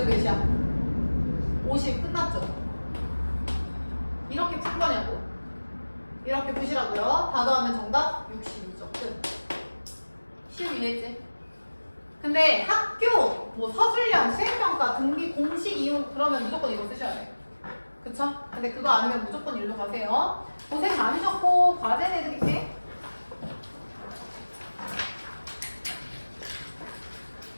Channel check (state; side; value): inverted; both; correlation -1.00